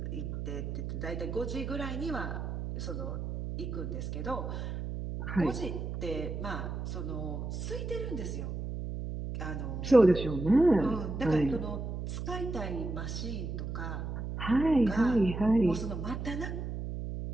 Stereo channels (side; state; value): right; noise; hum, 5 dB below the sound